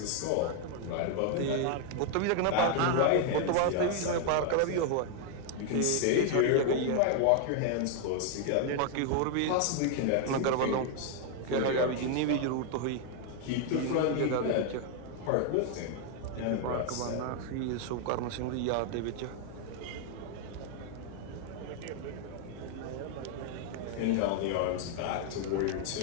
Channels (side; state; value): both; different; correlation 0.00